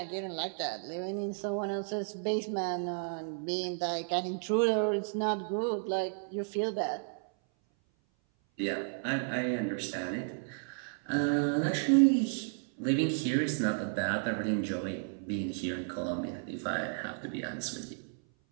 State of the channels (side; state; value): left; silent; 56 dB below the other